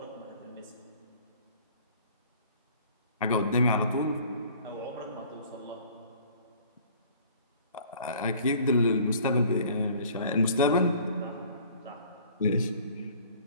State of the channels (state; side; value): inverted; both; correlation -0.51